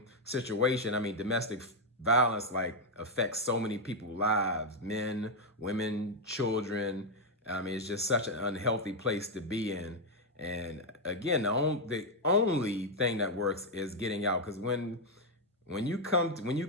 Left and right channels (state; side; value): normal; both; correlation 0.01